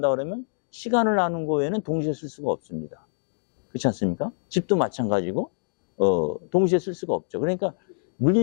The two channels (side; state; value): right; silent; digital silence